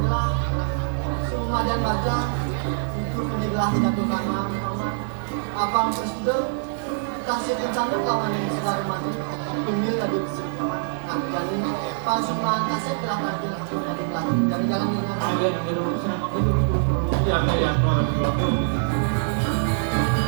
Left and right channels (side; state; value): left; silent; 62 dB below the other